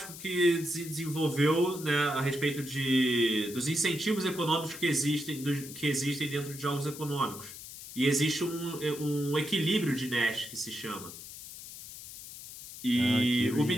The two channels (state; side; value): noise; left; hiss, 13 dB below the sound